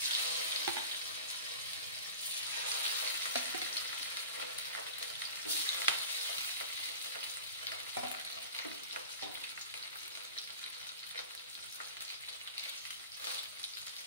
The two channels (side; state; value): both; inverted; correlation -0.36